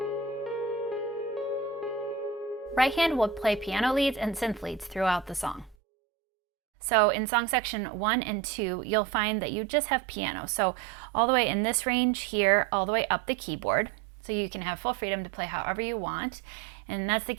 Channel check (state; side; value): drops out; left; at 5.8 s